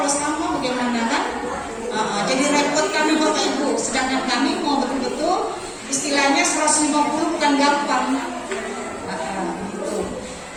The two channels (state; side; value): identical; both; correlation 1.00